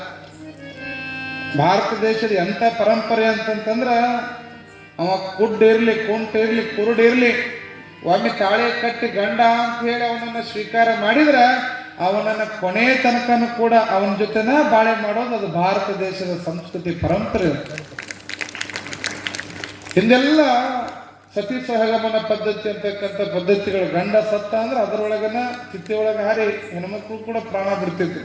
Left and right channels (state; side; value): identical; both; correlation 1.00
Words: ಭಾರತ ದೇಶದ ಎಂಥ ಪರಂಪರೆ ಅಂತಂತಂದ್ರ, ಅವ ಕುಡ್ಡಿರ್ಲಿ ಕುಂಟಿರ್ಲಿ ಕುರುಡಿರ್ಲಿ ಒಮ್ಮೆ ತಾಳೆ ಕಟ್ಟಿ ಗಂಡ ಅಂತ ಹೇಳಿ ಅವನನ್ನು ಸ್ವೀಕಾರ ಮಾಡಿದ್ರೆ ಅವನನ್ನು ಕೊನೆ ತನಕನೂ ಕೂಡ ಅವನ ಜೊತೆನ ಬಾಳೆ ಮಾಡೋದು ಅದು ಭಾರತ ದೇಶದ ಸಂಸ್ಕೃತಿ ಪರಂಪರೆ. ಹಿಂದೆಲ್ಲ ಸತಿ ಸಹಗಮನ ಪದ್ಧತಿ ಅಂತಕ್ಕಂಥ ಪದ್ಧತಿಗಳು, ಗಂಡ ಸತ್ತ ಅಂದ್ರೆ ಅದರೊಳಗನ ಚಿತ್ತೆಯೊಳಗೆ ಹಾರಿ ಹೆಣ್ಮಕ್ಳು ಕೂಡ ಪ್ರಾಣ ಬಿಡ್ತಿದ್ರು.